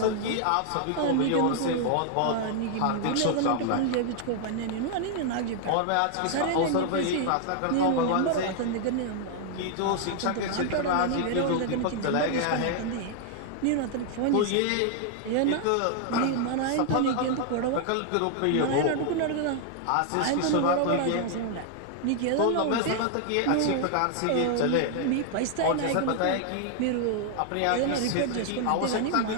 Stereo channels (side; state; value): both; different; correlation 0.00